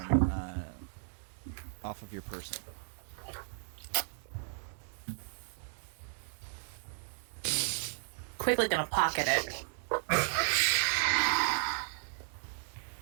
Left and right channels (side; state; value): left; silent; digital silence